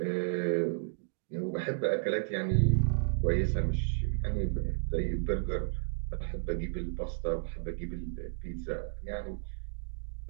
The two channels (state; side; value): silent; left; digital silence